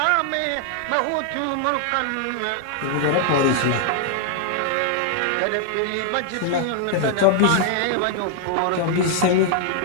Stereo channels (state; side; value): different; both; correlation 0.00